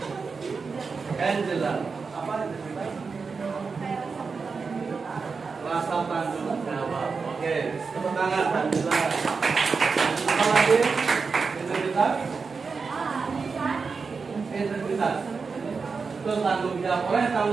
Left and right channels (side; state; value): left; quieter; 4.9 dB